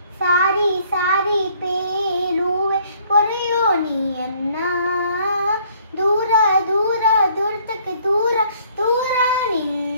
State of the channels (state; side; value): inverted; both; correlation -0.61